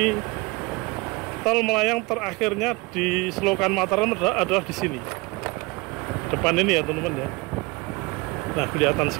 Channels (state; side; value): quieter; left; 24.9 dB